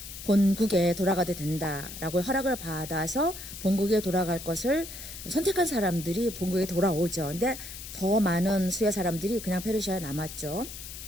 본국에 돌아가도 된다라고 허락을 받아서 본국에 돌아갈 것을 선택한 사람들이 본국에 돌아오죠. 근데 더 많은 수의 사람들이 그냥 페르시아에 남았죠.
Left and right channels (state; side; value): noise; left; hiss, 11 dB below the sound